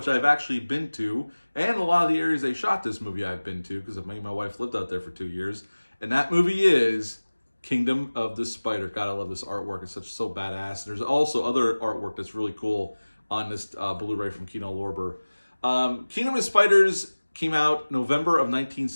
I've actually been to. And a lot of the areas they shot this movie I've been to because me and my wife lived out there for 2 years. And that movie is Kingdom of the Spider. God, I love this artwork. It's so badass. There's also other artwork that's really cool on this Blu-ray from Kino Lorber. Kingdom of the Spiders came out November of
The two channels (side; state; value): both; inverted; correlation -1.00